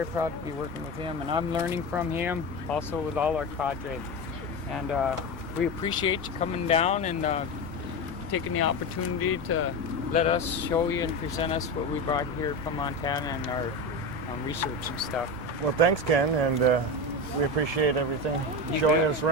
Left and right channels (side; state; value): both; normal; correlation 0.20